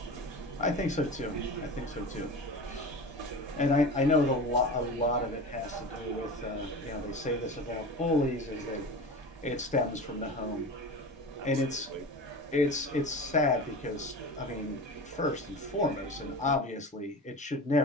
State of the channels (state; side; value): normal; both; correlation 0.31